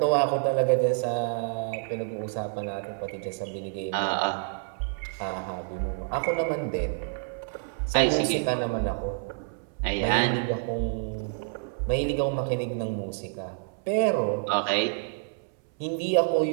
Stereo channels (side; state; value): left; silent; 59 dB below the other